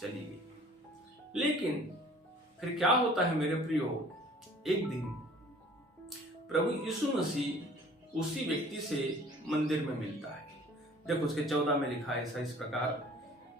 चली गई। लेकिन फिर क्या होता है मेरे प्रियो, एक दिन प्रभु यीशु मसीह उसी व्यक्ति से मंदिर में मिलता है। देखो उसके 14 में लिखा है ऐसा इस प्रकार,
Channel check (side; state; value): both; normal; correlation 0.51